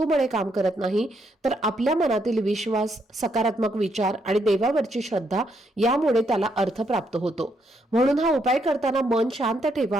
काम करत नाही, तर आपल्या मनातील विश्वास, सकारात्मक विचार आणि देवावरची श्रद्धा यामुळे त्याला अर्थ प्राप्त होतो. म्हणून हा उपाय करताना मन शांत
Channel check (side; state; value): both; normal; correlation 0.76